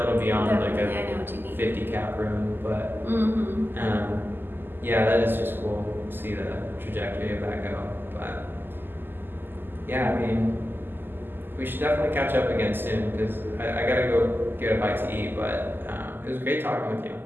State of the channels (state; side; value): late; left; 0.095 ms